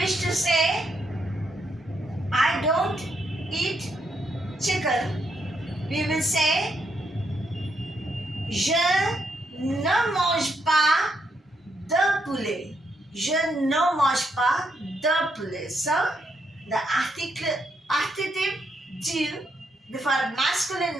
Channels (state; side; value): normal; both; correlation 0.78